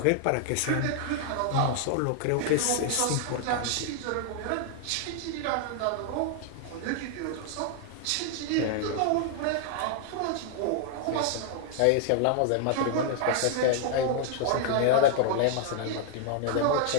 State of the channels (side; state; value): both; different; correlation 0.00